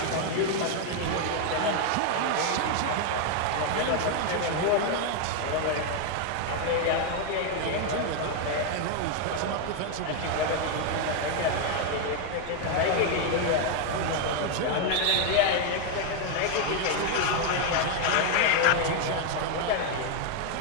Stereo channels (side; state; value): both; different; correlation 0.01